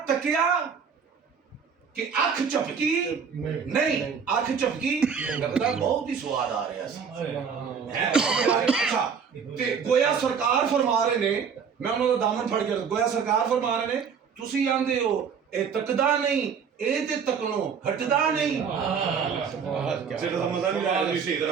ਤੱਕਿਆ ਕਿ ਅੱਖ ਝਪਕੀ ਨਹੀਂ, ਅੱਖ ਝਪਕੀ ਲੱਗਦਾ ਬਹੁਤ ਹੀ ਸਵਾਦ ਆ ਰਿਹਾ ਸੀ। ਅੱਛਾ ਤੇ ਗੋਇਆ ਸਰਕਾਰ ਫਰਮਾ ਰਹੇ ਨੇ, ਮੈਂ ਉਹਨਾਂ ਦਾ ਦਾਮਨ ਫੜ ਕੇ ਗੋਇਆ ਸਰਕਾਰ ਫਰਮਾ ਰਹੇ ਨੇ ਤੁਸੀਂ ਆਂਦੇ ਹੋ ਇਹ ਤੱਕਦਾ ਨਹੀਂ ਇਹ ਤੇ ਤੱਕਣੋਂ ਹਟਦਾ ਨਹੀਂ। ਸਿਰ ਦਾ ਮਜ਼ਾ ਨਹੀਂ ਆਇਆ, ਤੁਸੀਂ ਸਹੀ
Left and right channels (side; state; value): left; quieter; 6.5 dB